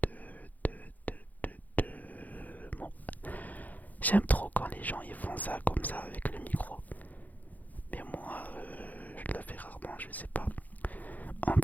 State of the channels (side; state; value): right; late; 0.080 ms